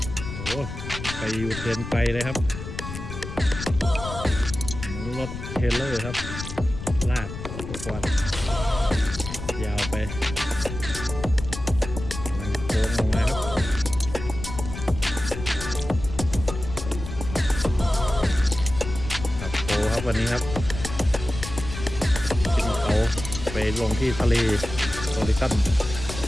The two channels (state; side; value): noise; left; rumble, 9 dB below the sound